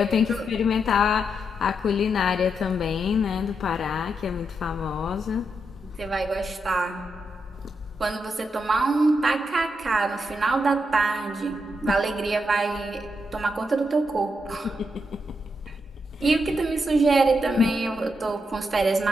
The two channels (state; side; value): normal; both; correlation 0.82